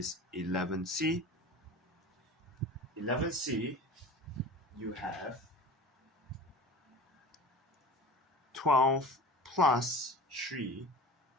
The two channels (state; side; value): normal; both; correlation 0.38